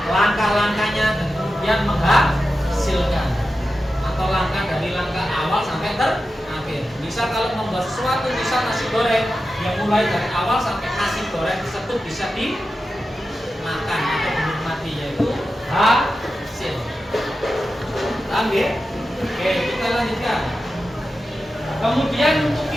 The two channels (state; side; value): normal; both; correlation 0.91